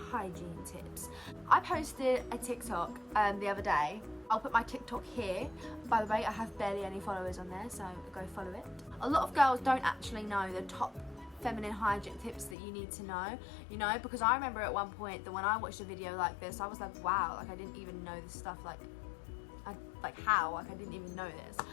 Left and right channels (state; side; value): drops out; right; at 12.6 s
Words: hygiene tips. I posted a TikTok the other day. I'll put my TikTok here. By the way, I have barely any followers on there, so go follow it. A lot of girls don't actually know the top feminine hygiene tips that you need to know, because I remember at one point that when I watched a video like this, I was like, wow, like I didn't even know this stuff, I didn't even know this.